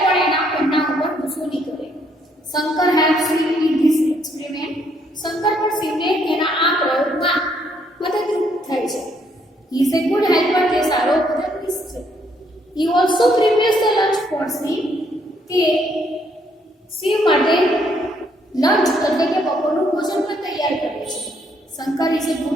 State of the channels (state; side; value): normal; both; correlation 0.70